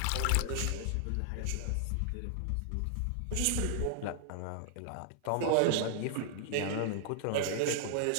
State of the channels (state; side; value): different; both; correlation -0.01